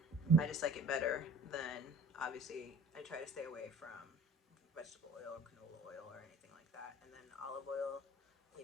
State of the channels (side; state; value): both; normal; correlation 0.45